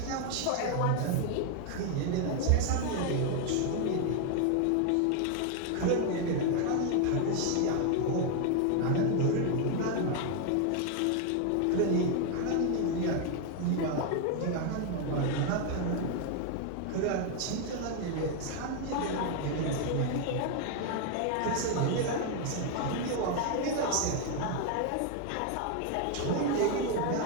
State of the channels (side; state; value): both; different; correlation 0.01